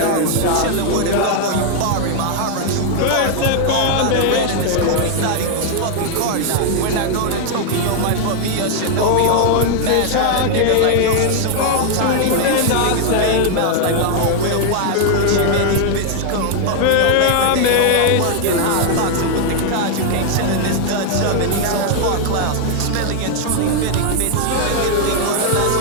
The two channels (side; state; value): both; different; correlation 0.00